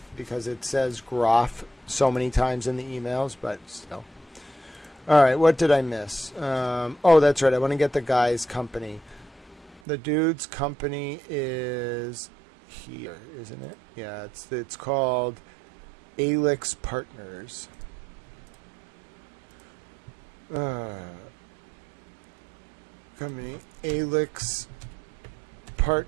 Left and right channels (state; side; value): drops out; left; at 9.8 s